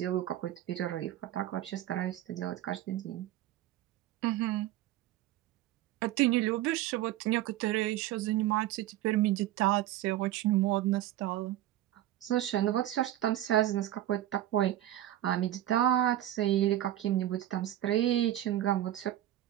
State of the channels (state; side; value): quieter; left; 13.5 dB